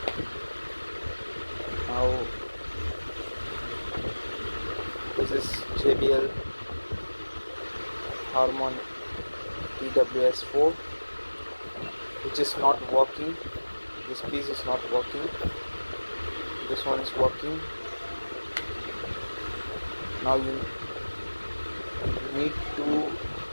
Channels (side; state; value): both; inverted; correlation -1.00